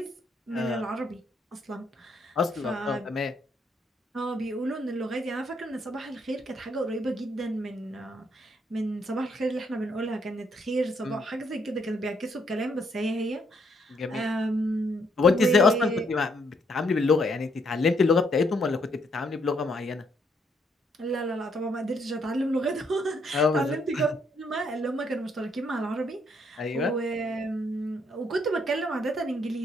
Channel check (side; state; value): both; normal; correlation 0.72